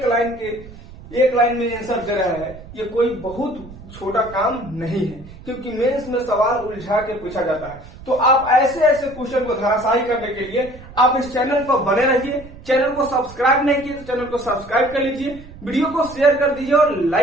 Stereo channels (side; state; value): right; noise; rumble, 18 dB below the sound